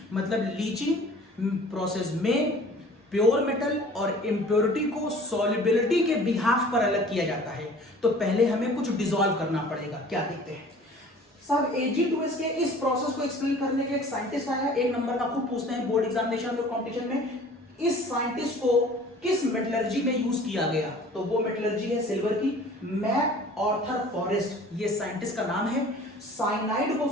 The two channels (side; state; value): both; normal; correlation 0.47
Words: मतलब लीचिंग प्रोसेस में प्योर मेटल और इम्प्योरिटी को सॉल्युबिलिटी के बिहाफ पर अलग किया जाता है। तो पहले हमें कुछ डिसॉल्व करना पड़ेगा। क्या देखते हैं सब Ag2S के इस प्रोसेस को एक्सप्लेन करने के एक साइंटिस्ट आया, एक नंबर का खूब पूछते हैं बोर्ड एग्जामिनेशन और कंपटीशन में। इस साइंटिस्ट को किस मेटलर्जी में यूज किया गया? तो वो मेटलर्जी है सिल्वर की। मैक आर्थर फॉरेस्ट ये साइंटिस्ट का नाम है। साइनाइड को